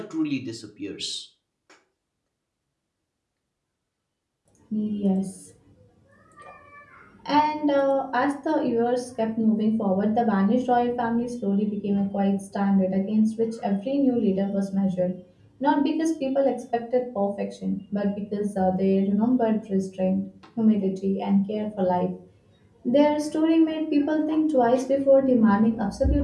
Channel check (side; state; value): both; identical; correlation 1.00